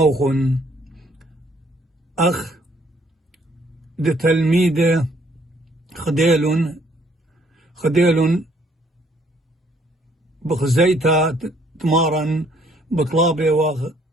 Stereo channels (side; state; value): both; normal; correlation 0.64